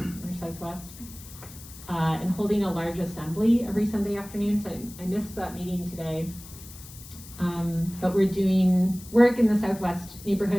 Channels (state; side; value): noise; left; hiss, 17 dB below the sound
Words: or Southwest. And holding a large assembly every Sunday afternoon, so I missed that meeting today. But we're doing work in the Southwest